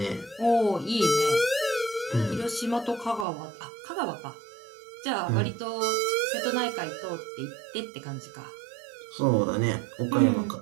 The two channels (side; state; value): left; drops out; at 3.2 s